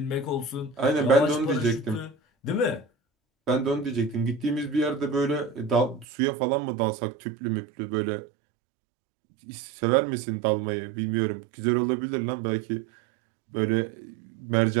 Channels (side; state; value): left; drops out; at 6.1 s